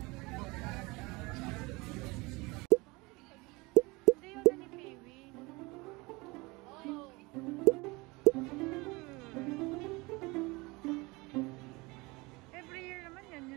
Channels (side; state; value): left; quieter; 24.4 dB